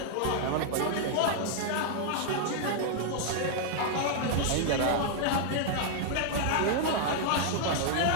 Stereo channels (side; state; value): both; different; correlation -0.01